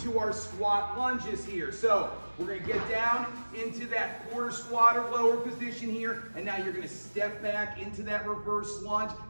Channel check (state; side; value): inverted; both; correlation -1.00